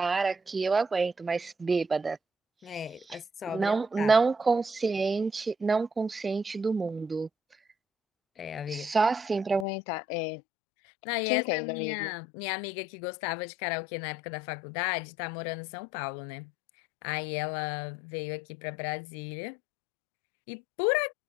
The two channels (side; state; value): right; drops out; at 9.7 s